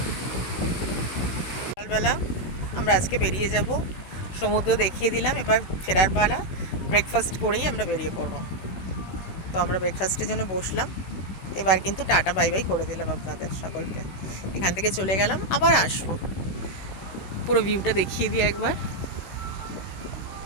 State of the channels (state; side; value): late; right; 16 ms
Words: সকালবেলা আমরা আজকে বেরিয়ে যাব, সমুদ্র দেখিয়ে দিলাম, এবার ফেরার পালা। ব্রেকফাস্ট করেই আমরা বেরিয়ে পড়বো। তো আমরা ব্রেকফাস্টের জন্য বসলাম, এবার কিন্তু টাটা বাই বাই করে দিলাম আপনাদের সকলকে। এখান থেকে চলে গেলাম, আবার আসবো। পুরো ভিউটা দেখিয়ে দিই একবার।